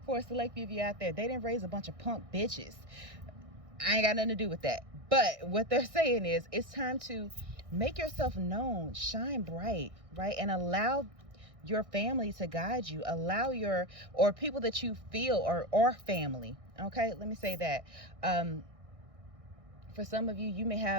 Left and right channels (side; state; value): left; late; 1.6 ms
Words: for a select few of you out there, they didn't raise a bunch of punk bitches. I ain't got nothing to do with that. But what they're saying is, it's time to make yourself known, shine bright, right? And allow your family to guide you. Allow your, or people that you feel or family. Okay, let me say that. For some of you, you may